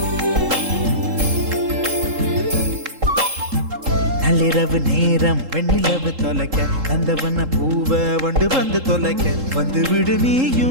நள்ளிரவு நேரம் வெண்ணிலவு தொலைக்க நந்தவன பூவ வண்டு வந்து தொலைக்க வந்து விடு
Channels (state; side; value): late; left; 3.7 ms